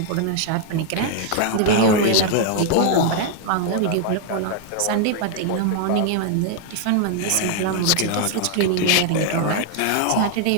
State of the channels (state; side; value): different; both; correlation 0.00